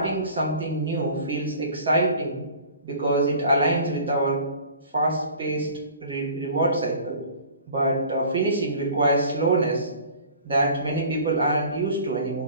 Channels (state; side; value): inverted; both; correlation -0.45